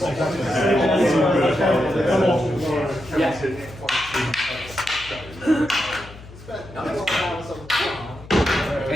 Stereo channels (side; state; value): left; noise; hum, 18 dB below the sound